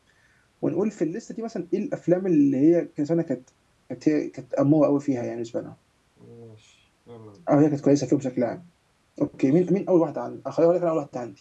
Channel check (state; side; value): identical; both; correlation 1.00